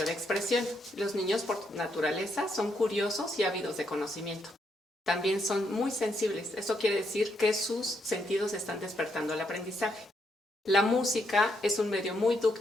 de expresión. Los niños por naturaleza son curiosos y ávidos de conocimiento. También son muy sensibles. Eso quiere decir que sus sentidos están despertando al aprendizaje. La música es un medio muy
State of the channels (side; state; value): both; normal; correlation 0.77